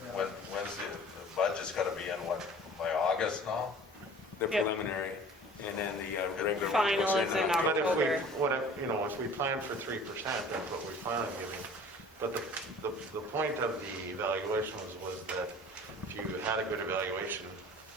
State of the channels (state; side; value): normal; both; correlation 0.45